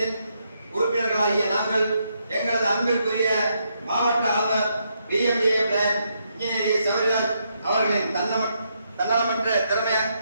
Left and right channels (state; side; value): inverted; both; correlation -0.78